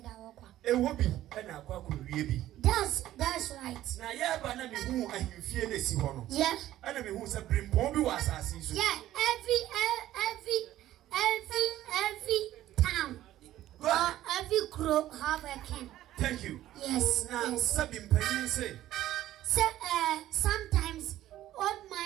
I walk. A whoopee and a quack will be. That's right. Now, yeah, but I mean, who are you feeling? See, one. Yeah. And I mean, who's a brim pombi was as yeah, every town or every group have a king. Thank you. Yes. Now, yes. Sabin Penny say. So, sometimes old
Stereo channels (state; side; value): quieter; left; 13.8 dB